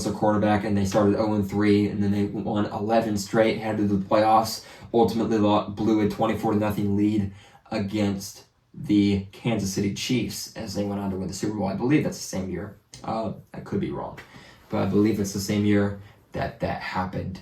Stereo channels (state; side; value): identical; both; correlation 1.00